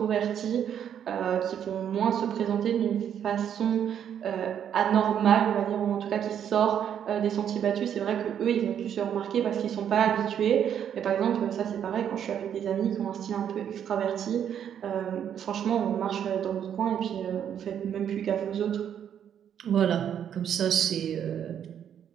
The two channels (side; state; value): left; quieter; 9.1 dB